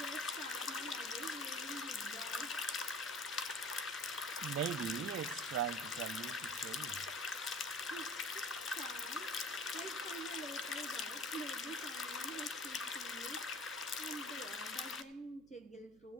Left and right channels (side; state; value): right; noise; hum, 27 dB below the sound